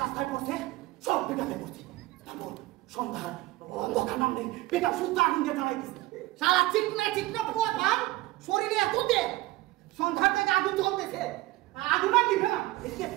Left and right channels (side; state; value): left; quieter; 19.1 dB